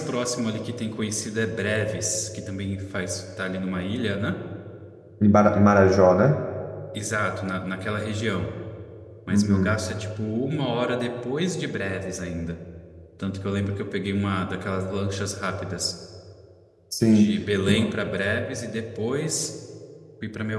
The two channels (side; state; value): both; identical; correlation 1.00